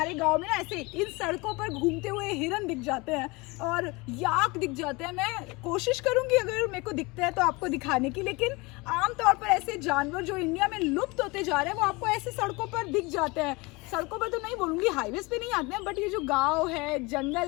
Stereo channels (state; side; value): quieter; right; 25.2 dB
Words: गांव में ना ऐसे इन सड़कों पर घूमते हुए हिरन दिख जाते हैं और याक दिख जाते हैं। मैं कोशिश करूंगी अगर मेरे को दिखते हैं तो आपको दिखाने की, लेकिन आमतौर पर ऐसे जानवर जो इंडिया में लुप्त होते जा रहे हैं वो आपको ऐसे सड़कों पर दिख जाते हैं। सड़कों पर तो नहीं बोलूँगी, हाईवेज पे नहीं आते हैं, बट ये जो गांव है,